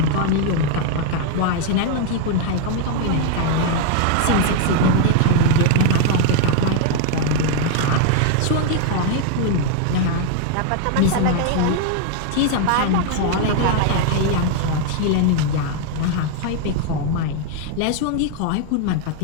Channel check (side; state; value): both; different; correlation 0.00